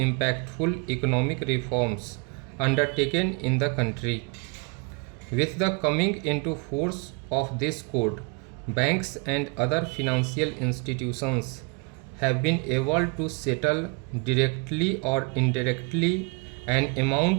economic reforms undertaken in the country. With the coming into force of this code, banks and other financial institutions have been able to settle directly or indirectly an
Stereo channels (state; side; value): quieter; left; 32.3 dB